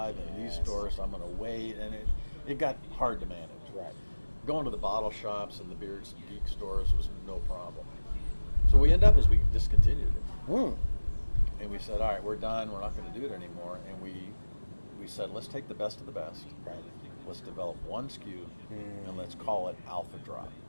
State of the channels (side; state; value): both; inverted; correlation -1.00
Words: in these stores, so I'm going to wait, and it got hard to manage. Right. Going to the bottle shops and the beer geek stores was no problem. So what we ended up is we discontinued it. And we said, all right, we're done. We're not going to do it anymore. And we said, let's take the best of the best. Right. Let's develop one SKU, and let's call it Alpha Drop.